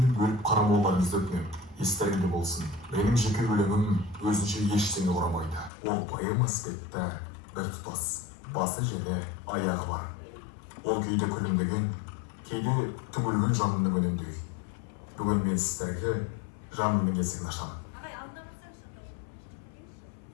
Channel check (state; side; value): drops out; right; at 5.7 s